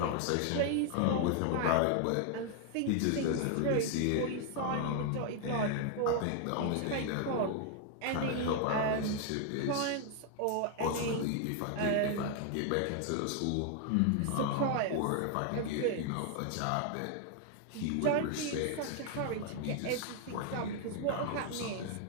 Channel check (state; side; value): different; both; correlation 0.00